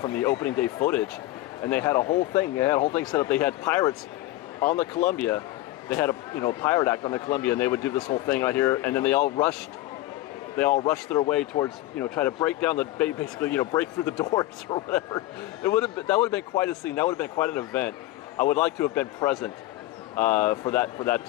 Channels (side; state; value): right; quieter; 16.4 dB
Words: the opening day footage, and they had a whole thing. They had a whole thing set up. They had pirates on the Columbia. They had a pirate act on the Columbia, and they would do this whole thing right here, and then they all rushed their way towards, try to break down basically, break through the doors or whatever. That would have been quite a scene. That would have been quite an event. I would like to have been present for that